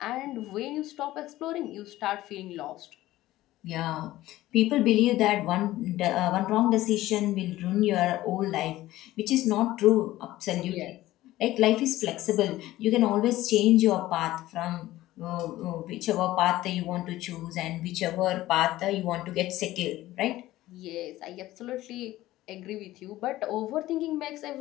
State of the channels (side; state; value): right; quieter; 16.0 dB